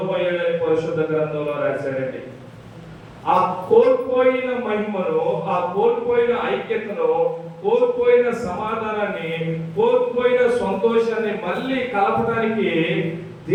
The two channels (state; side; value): identical; both; correlation 1.00